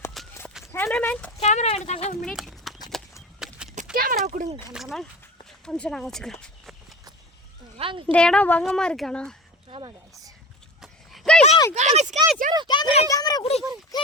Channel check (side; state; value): both; normal; correlation 0.34